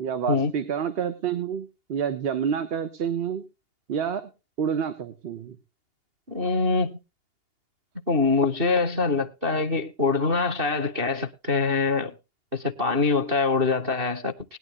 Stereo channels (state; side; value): late; left; 2.8 ms